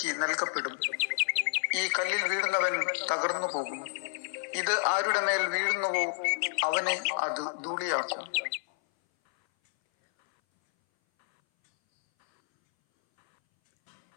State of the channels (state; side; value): silent; right; 58 dB below the other